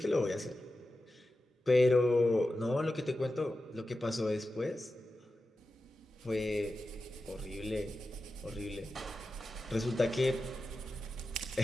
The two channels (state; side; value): normal; both; correlation 0.92